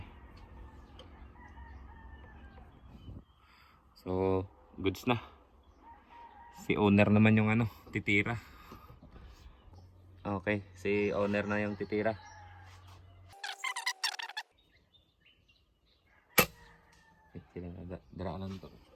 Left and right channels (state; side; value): identical; both; correlation 1.00